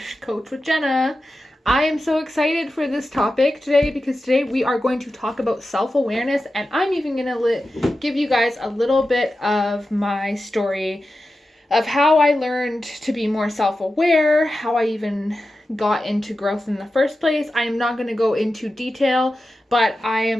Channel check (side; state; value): both; normal; correlation 0.92